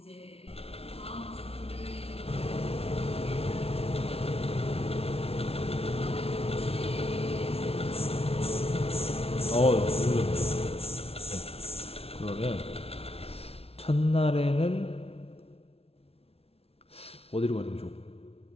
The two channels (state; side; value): late; right; 0.29 ms